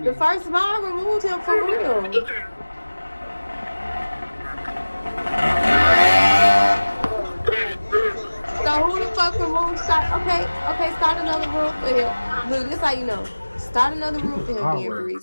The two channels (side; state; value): both; inverted; correlation -1.00